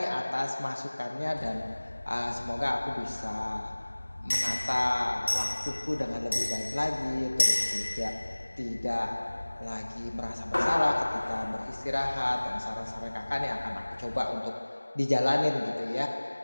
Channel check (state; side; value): inverted; both; correlation -1.00